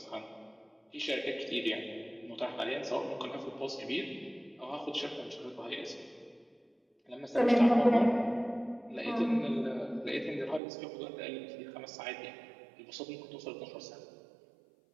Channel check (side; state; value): left; drops out; at 10.6 s